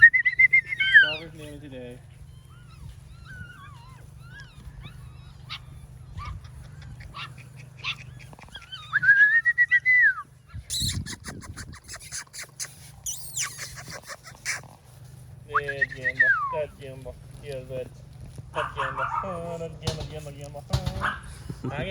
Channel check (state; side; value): identical; both; correlation 1.00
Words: Draw his name today. That Jimbo. Yeah, that Jimbo. Oh, that Jimbo.